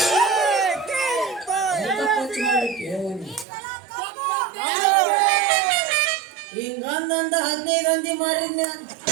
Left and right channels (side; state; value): left; drops out; at 3.5 s